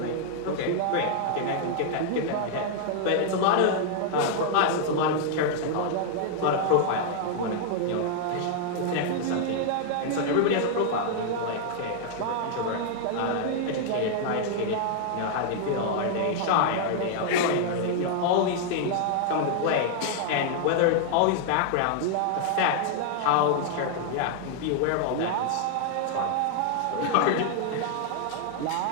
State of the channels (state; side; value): different; both; correlation -0.01